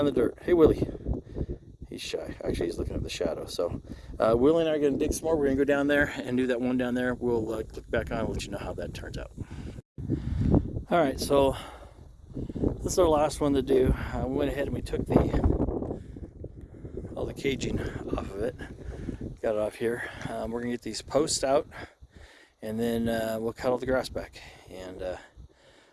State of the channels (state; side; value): identical; both; correlation 1.00